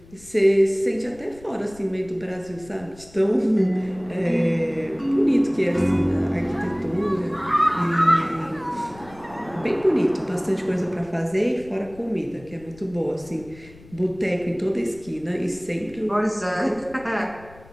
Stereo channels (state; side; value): noise; left; rumble, 22 dB below the sound